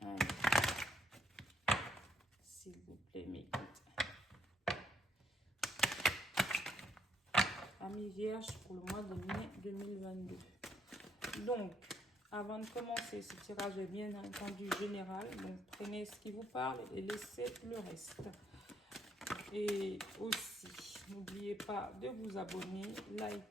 Allez. S'il vous plaît, mes guides. Amis vierges pour le mois de mai 2022. Donc, avant de commencer, ce tirage est bien entendu général. Donc, prenez ce qui vous parle et laissez le reste. Et aussi, n'oubliez pas de vous abonner,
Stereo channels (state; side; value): normal; both; correlation 0.71